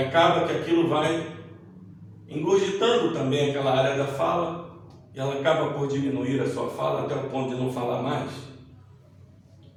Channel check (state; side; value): identical; both; correlation 1.00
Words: que aquilo vai engurgitando também aquela área da fala, e ela acaba por diminuir a sua fala até o ponto de não falar mais.